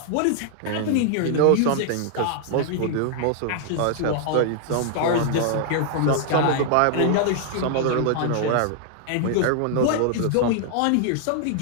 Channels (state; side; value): different; both; correlation 0.00